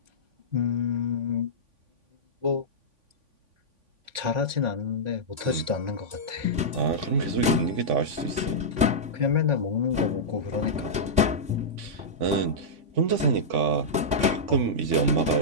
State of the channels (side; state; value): left; late; 3.5 ms